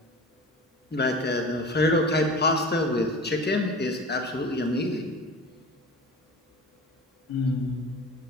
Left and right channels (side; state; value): both; normal; correlation 0.35